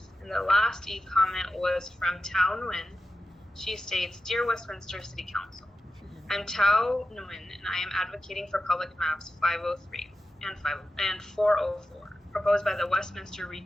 And the last e-comment was from Tao Nguyen. She states, Dear Westminster City Council, I'm Tao Nguyen, and I am advocating for public maps 503 and 404, proposed by the Westminster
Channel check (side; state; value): both; normal; correlation 0.92